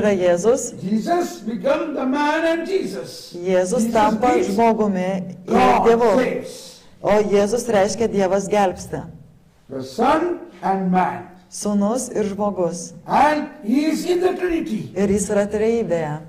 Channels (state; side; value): identical; both; correlation 1.00